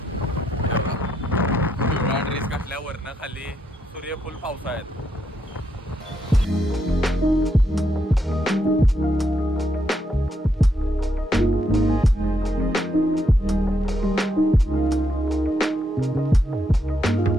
पिवळा ड्रेस घातल्या वरनं खाली सूर्यफूल पावसाळ्यात.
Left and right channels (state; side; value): normal; both; correlation 0.79